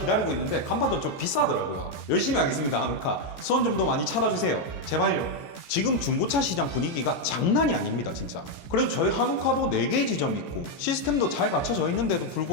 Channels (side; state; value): right; late; 14 ms